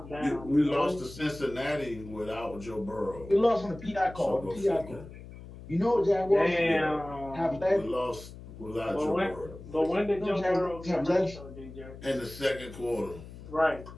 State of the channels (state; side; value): noise; left; hum, 15 dB below the sound